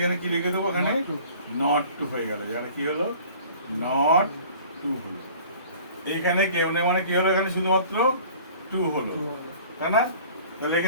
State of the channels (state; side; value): inverted; both; correlation -0.48